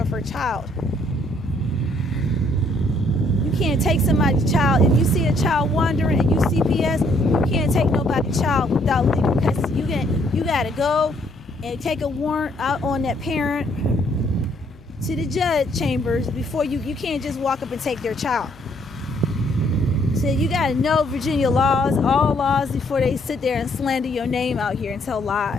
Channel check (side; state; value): left; noise; hum, 24 dB below the sound